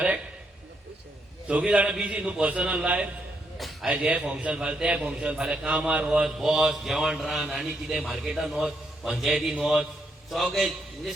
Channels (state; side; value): normal; both; correlation 0.77